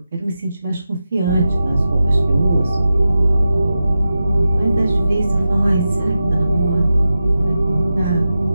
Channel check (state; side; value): inverted; both; correlation -0.91